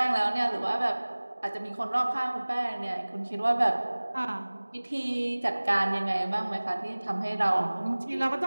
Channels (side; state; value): both; inverted; correlation -1.00